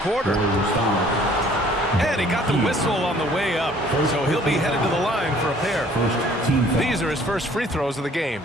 And he got the whistle on the way up, so he'll be headed to the line for a pair. These are his first free throws of the game.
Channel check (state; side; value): normal; both; correlation 0.56